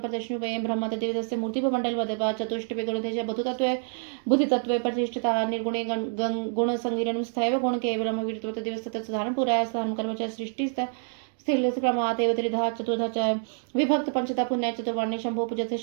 प्रदर्शनुपये ब्रह्म तदेवस्य मूर्ति मंडल वदवा चतुष्टय गुणतेज बुद्धितत्वे प्रतिष्ठिता निर्गुणे गुण संगिरणं स्थैव गुण केवलम वीरत्व तदेव साधारण पुराय साधारण कर्म च सृष्टि स्थिरक्रमात् एव त्रिधा चतुर्धा च विभक्त पंचता पुण्य चतुर्वर्णे शंभो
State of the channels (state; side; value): silent; left; 56 dB below the other